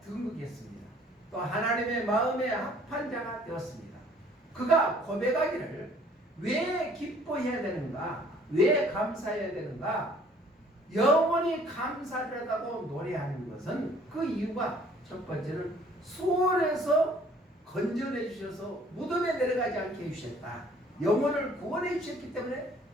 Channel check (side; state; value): both; normal; correlation 0.57